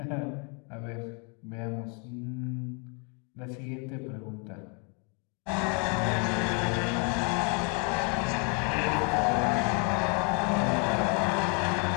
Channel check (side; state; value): right; quieter; 35.9 dB